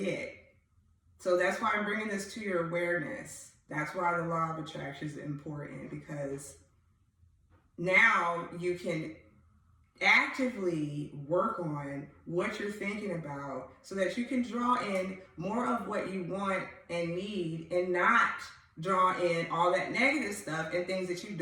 So that's why I'm bringing this to your awareness. That's why the law of attraction is important, because now you can actively work on what you're thinking about so that you can draw in more of what you want and need, and not draw in all that negative stuff and things that you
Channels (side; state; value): both; identical; correlation 1.00